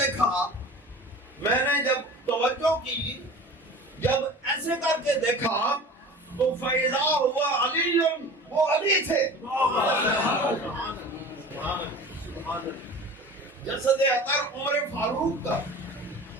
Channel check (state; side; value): normal; both; correlation 0.38